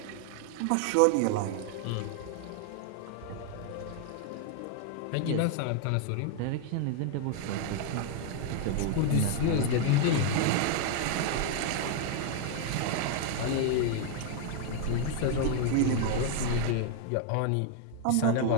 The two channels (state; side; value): different; both; correlation 0.00